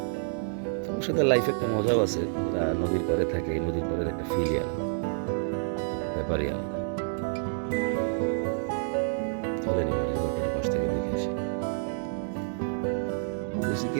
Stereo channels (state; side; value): silent; left; digital silence